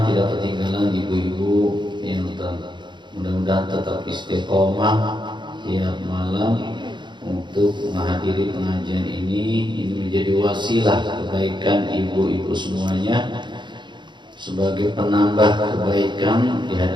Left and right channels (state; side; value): late; left; 0.22 ms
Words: tidak ketinggalan ibu-ibu yang mudah-mudahan tetap istiqomah tiap malam untuk menghadiri pengajian ini. Ini menjadi wasilah kebaikan ibu-ibu semuanya, sebagai penambah kebaikan di